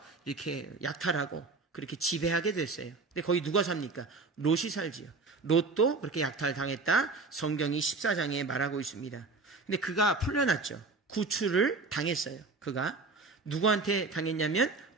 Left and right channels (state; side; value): quieter; left; 3.8 dB